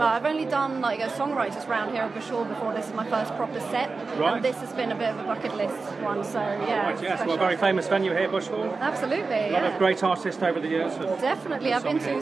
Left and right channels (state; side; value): quieter; left; 4.2 dB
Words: I've only done like a songwriters round here at Bush Hall before. This is my first proper set, and this has been a bit of a bucket list one. So yeah, right, yes, well, a very famous venue here, Bush Hall. Absolutely, a lot of great artists over the years. Definitely, I've been to